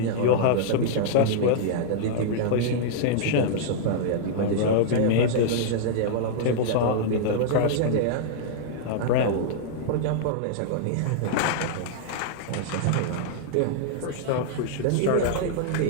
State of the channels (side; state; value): both; different; correlation -0.01